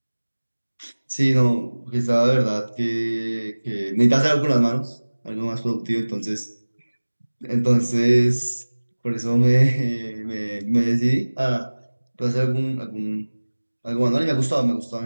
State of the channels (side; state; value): both; inverted; correlation -1.00